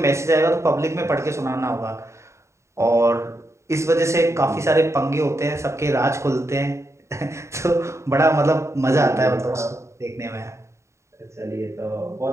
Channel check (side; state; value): left; late; 0.14 ms